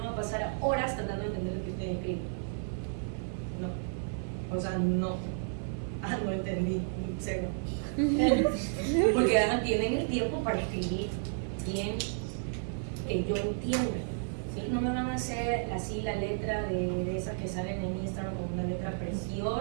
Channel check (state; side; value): silent; left; 56 dB below the other